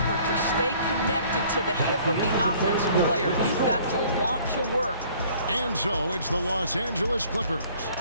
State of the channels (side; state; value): both; inverted; correlation -0.55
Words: to stay connected to the hip of the offensive player. You've got to want to work. And so it's the Los Angeles Clippers